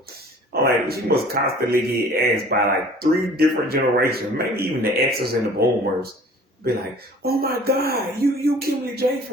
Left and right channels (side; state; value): both; normal; correlation 0.49